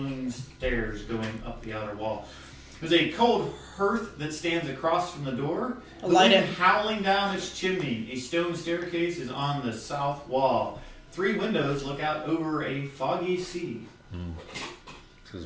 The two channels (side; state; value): both; identical; correlation 1.00